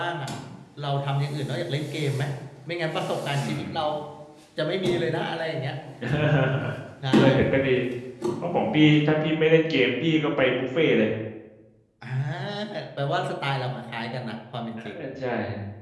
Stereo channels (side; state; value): both; identical; correlation 1.00